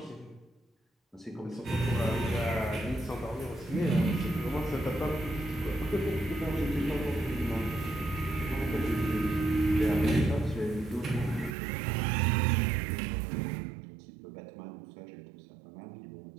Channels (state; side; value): drops out; left; at 11.6 s